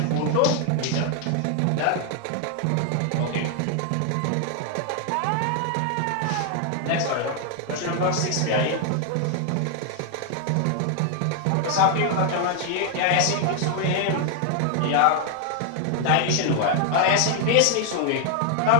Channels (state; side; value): different; both; correlation 0.00